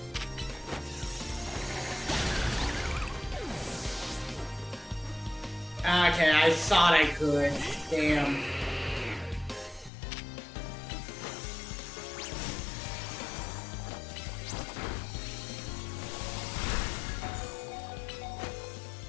Okay, I thought I could. Damn.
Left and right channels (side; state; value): right; drops out; at 9.9 s